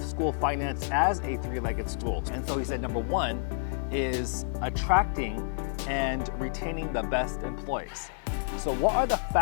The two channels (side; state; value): right; silent; digital silence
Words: school finance as a three-legged stool. And so he said number one is attracting and retaining the best employees. So what are the